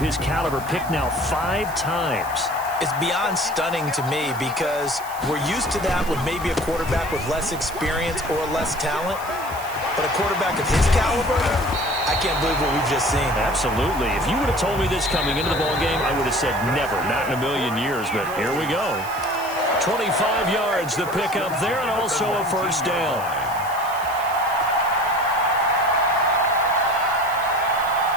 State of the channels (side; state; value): right; noise; hiss, 16 dB below the sound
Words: his caliber picked now 5 times? It's beyond stunning to me because we're used to that with maybe a quarterback with less experience or less talent. But a quarterback of his caliber, I can't believe what we've just seen. Absolutely. If you would have told me this coming into the ballgame, I would have said never, not in a million years. But here we go. 25 yards, the pickup there, and also a 1st down.